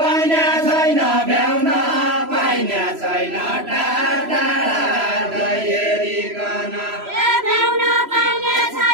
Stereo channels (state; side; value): late; left; 3.0 ms